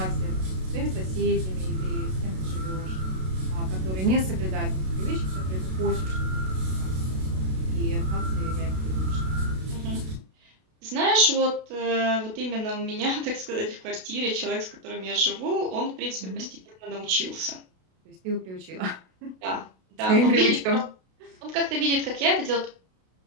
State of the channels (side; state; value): left; late; 32 ms